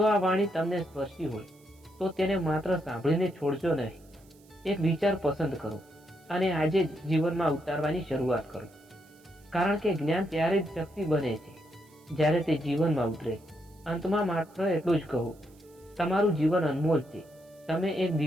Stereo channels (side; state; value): right; noise; hiss, 30 dB below the sound